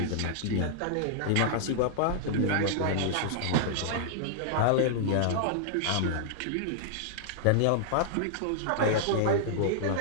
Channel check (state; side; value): different; both; correlation -0.01